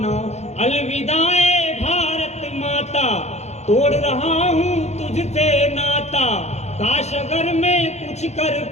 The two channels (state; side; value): late; right; 0.32 ms